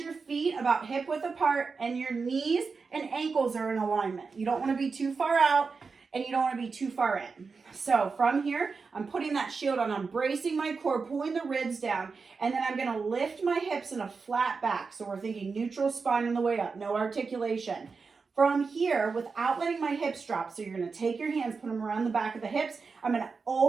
feet about hip width apart and your knees and ankles are in alignment. You don't want to be too far out and you don't want to be too far in. So from here, I'm putting that shield on. I'm bracing my core, pulling the ribs down, and then I'm going to lift my hips in a flat back. So we're thinking neutral spine on the way up, no articulation. From here, without letting my hips drop, so you're going to take your hands, put them around the back of the hips. I'm going to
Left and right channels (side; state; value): left; quieter; 4.8 dB